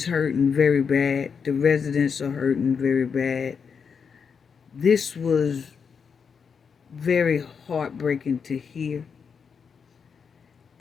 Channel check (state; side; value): quieter; right; 6.2 dB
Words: hurting very bad. The residents are hurting very bad. This was very heartbreaking to hear.